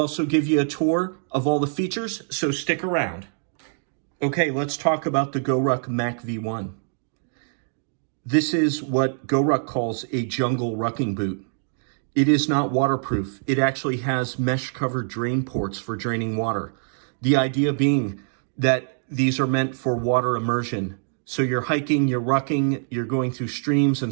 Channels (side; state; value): left; silent; digital silence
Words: give you a tour of all the features, so stick around. Okay, let's talk about the GORUCK MACV-1. This is what GORUCK calls a jungle rucking boot. It is not waterproof. It actually has mesh-covered drain ports for draining water. The idea being that these are meant for water immersion. So you're hiking, you're rucking, you're going through streams